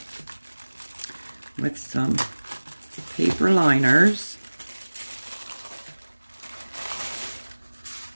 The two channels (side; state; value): both; inverted; correlation -1.00